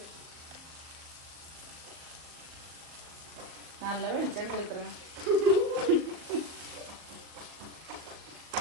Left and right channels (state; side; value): late; left; 38 ms